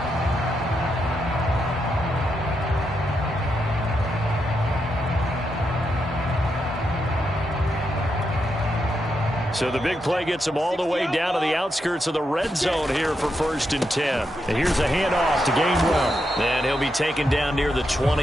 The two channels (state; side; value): normal; both; correlation 0.83